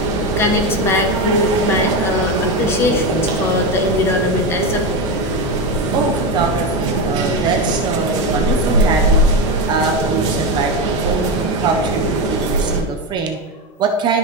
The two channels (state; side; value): normal; both; correlation 0.15